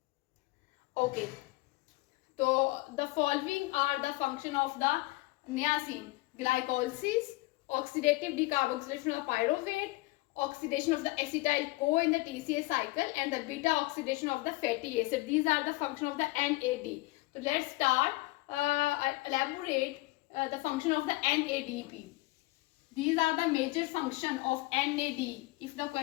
Okay. So the following are the function of the niacin: glycolysis, oxidative decarboxylation of pyruvate, oxidation of the acetyl CoA in the TCA cycle, and the beta oxidation of the fatty acid. These are the function of the NAD. So let's start elaborate the function of the NADP. These are the major function of NAD. If the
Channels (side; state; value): right; quieter; 21.6 dB